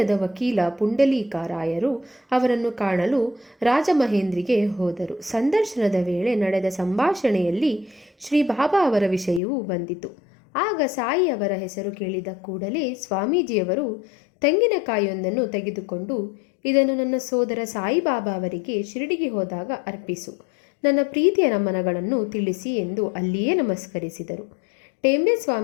ವಕೀಲ ಪುಂಡಲೀಕರಾಯರು ಅವರನ್ನು ಕಾಣಲು ರಾಜಮಹೇಂದ್ರಿಗೆ ಹೋದರು. ಸಂದರ್ಶನದ ವೇಳೆ ನಡೆದ ಸಂಭಾಷಣೆಯಲ್ಲಿ ಶ್ರೀ ಬಾಬಾ ಅವರ ವಿಷಯವೂ ಬಂದಿತು. ಆಗ ಸಾಯಿ ಅವರ ಹೆಸರು ಕೇಳಿದ ಕೂಡಲೇ ಸ್ವಾಮೀಜಿಯವರು ತೆಂಗಿನಕಾಯಿಯೊಂದನ್ನು ತೆಗೆದುಕೊಂಡು, ಇದನ್ನು ನನ್ನ ಸೋದರ ಸಾಯಿಬಾಬಾ ಅವರಿಗೆ ಶಿರಡಿಗೆ ಹೋದಾಗ ಅರ್ಪಿಸು, ನನ್ನ ಪ್ರೀತಿಯ ನಮನಗಳನ್ನು ತಿಳಿಸಿ ಎಂದು ಅಲ್ಲಿಯೇ ನಮಸ್ಕರಿಸಿದರು. ಟೇಂಬೆ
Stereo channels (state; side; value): drops out; right; at 9.4 s